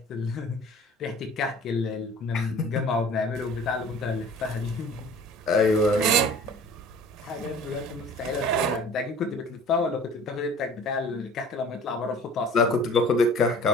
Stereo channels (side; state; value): both; normal; correlation 0.46